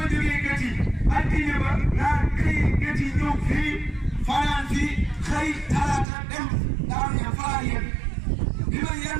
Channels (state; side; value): drops out; left; at 6.1 s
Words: jógee Gétti altine ba laa xëy Gétti ñëw fii fanaan fii xëy talaata dem Daaru Ñaan fa laa yem bi ma